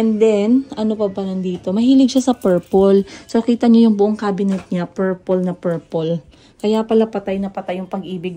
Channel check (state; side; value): identical; both; correlation 1.00